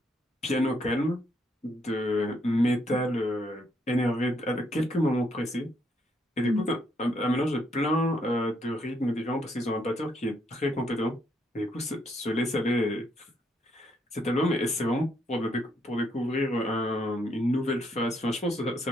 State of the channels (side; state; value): both; normal; correlation 0.73